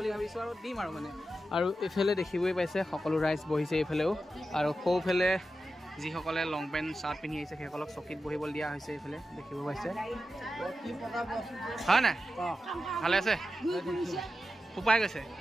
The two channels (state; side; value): normal; both; correlation 0.91